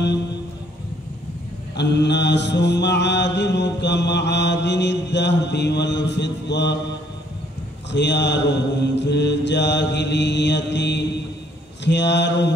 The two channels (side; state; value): both; normal; correlation 0.65